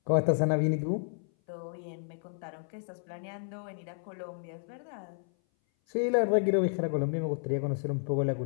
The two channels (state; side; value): silent; right; 57 dB below the other